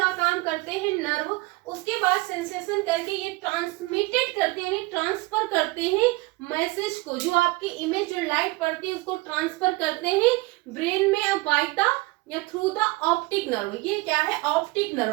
काम करते हैं नर्व। उसके बाद सेंसेशन करके ये ट्रांसमिटेड करते हैं, ट्रांसफर करते हैं मैसेज को, जो आपकी इमेज, जो लाइट पड़ती है उसको ट्रांसफर करते हैं ब्रेन में बाय द या थ्रू द ऑप्टिक नर्व। ये क्या है, ऑप्टिक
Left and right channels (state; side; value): quieter; left; 23.0 dB